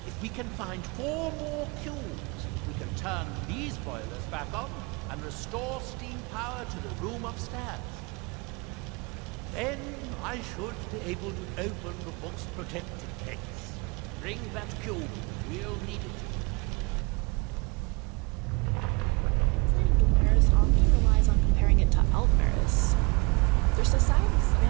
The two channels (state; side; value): quieter; left; 28.2 dB